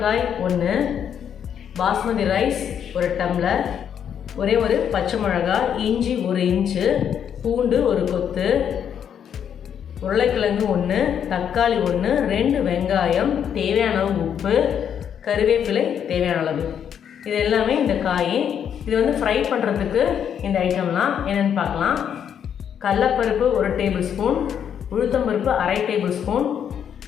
1, பாஸ்மதி ரைஸ் 1 டம்ளர், ஒரே ஒரு பச்சை மிளகாய், இஞ்சி 1 இன்ச்சு, பூண்டு 1 கொத்து, உருளைக்கிழங்கு 1, தக்காளி 1, 2 வெங்காயம், தேவையான அளவு உப்பு, கருவேப்பிலை தேவையான அளவு. இது எல்லாமே இந்த காய். இது வந்து ஃப்ரை பண்ணுறதுக்கு இந்த ஐட்டம்லாம் என்னென்னு பார்க்கலாம். கடலைப்பருப்பு 1 டேபிள் ஸ்பூன், உளுத்தம்பருப்பு 1/2 டேபிள் ஸ்பூன்,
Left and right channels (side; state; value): right; quieter; 8.6 dB